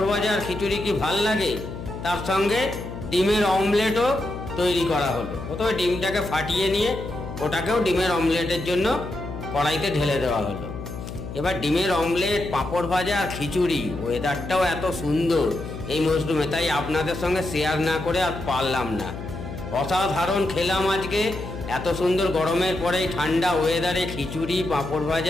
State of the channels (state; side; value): noise; left; hum, 9 dB below the sound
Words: ভাজা আর খিচুড়ি কি ভাল লাগে, তার সঙ্গে ডিমের অমলেটও তৈরি করা হলো। প্রথমে ডিমটাকে ফাটিয়ে নিয়ে ওটাকেও ডিমের অমলেটের জন্য কড়াইতে ঢেলে দেওয়া হলো। এবার ডিমের অমলেট, পাঁপড় ভাজা আর খিচুড়ি, ওয়েদারটাও এত সুন্দর এই মরশুমে, তাই আপনাদের সঙ্গে শেয়ার না করে আর পারলাম না। অসাধারণ খেলাম আজকে, এত সুন্দর গরমের পরে ঠান্ডা ওয়েদারে খিচুড়ি, পাঁপড়